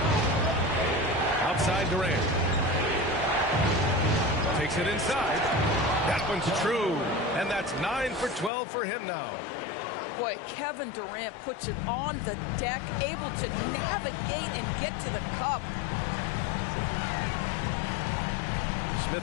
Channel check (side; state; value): right; drops out; at 8.5 s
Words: Outside Durant. Takes it inside. That one's true. And that's 9 for 12 for him now. Boy, Kevin Durant puts it on the deck, able to navigate and get to the cup.